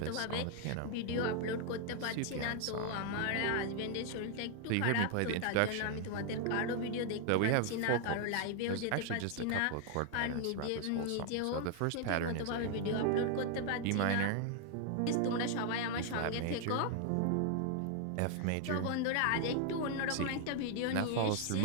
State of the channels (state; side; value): different; both; correlation 0.00